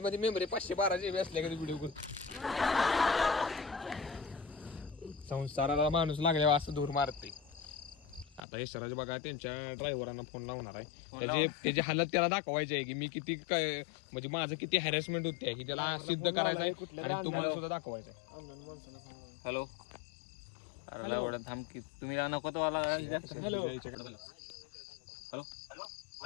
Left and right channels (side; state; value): right; drops out; at 8.4 s